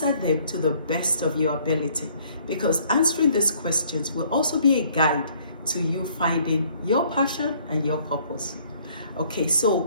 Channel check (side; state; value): both; inverted; correlation -0.61